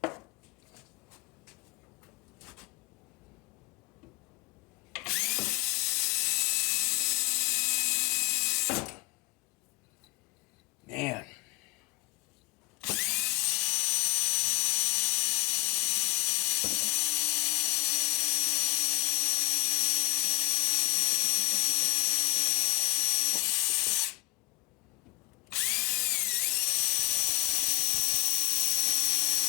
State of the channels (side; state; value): right; quieter; 22.7 dB